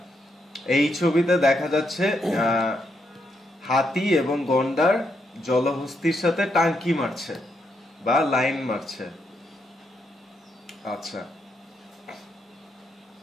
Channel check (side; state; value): both; normal; correlation 0.79